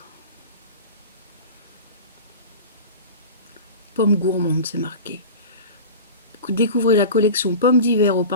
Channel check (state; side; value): inverted; both; correlation -0.33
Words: Pomme gourmande, c'est marqué. Découvrez la collection pommes d'hiver au